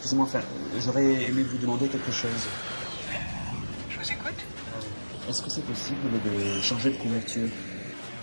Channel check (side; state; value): both; inverted; correlation -1.00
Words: enfin, j'aurais aimé vous demander quelque chose. Je vous écoute. Est-ce que c'est possible de changer de couverture?